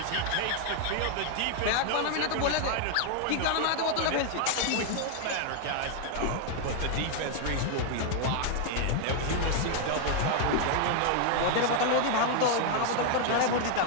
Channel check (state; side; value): different; both; correlation 0.00